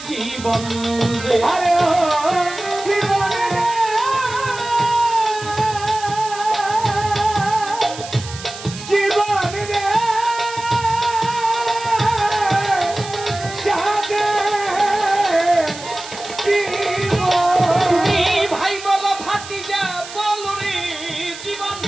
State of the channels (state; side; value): noise; right; hiss, 13 dB below the sound